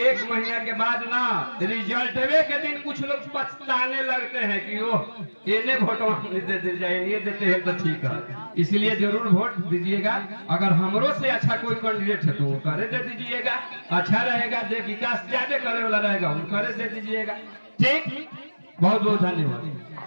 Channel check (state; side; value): inverted; both; correlation -1.00